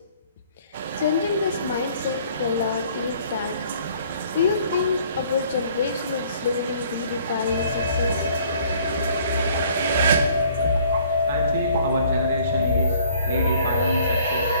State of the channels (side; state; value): both; inverted; correlation -0.58